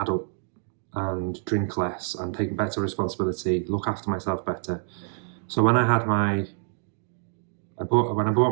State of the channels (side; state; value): left; silent; 61 dB below the other